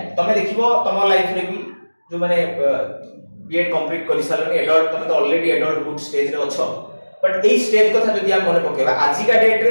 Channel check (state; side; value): inverted; both; correlation -1.00